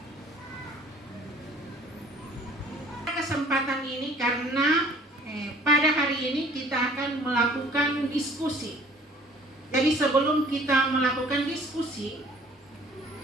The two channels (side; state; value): both; normal; correlation 0.53